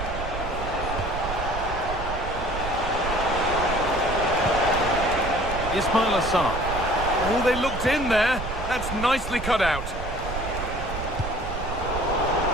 Ismail Assar. Oh, they looked in there. That's nicely cut out.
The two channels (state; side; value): noise; right; rumble, 7 dB below the sound